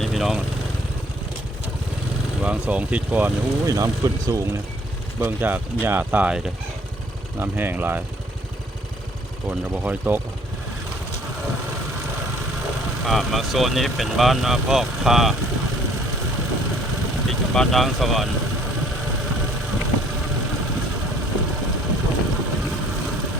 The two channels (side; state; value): both; normal; correlation 0.59